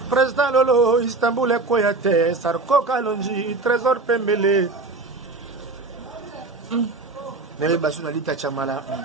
Président Lolo Istanbul Ekoyate Sarko Kalonji Trésor Pembele Nele Basuna Lita Chamala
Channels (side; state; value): left; quieter; 3.6 dB